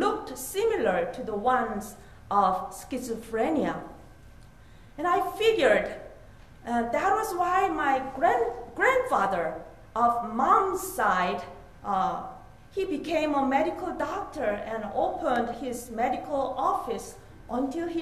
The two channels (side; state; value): both; identical; correlation 1.00